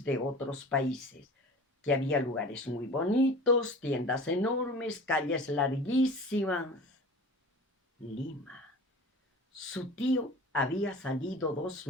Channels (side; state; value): both; normal; correlation 0.39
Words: de otros países, que había lugares muy bonitos, tiendas enormes, calles larguísimas. Lima. Su tío había salido 2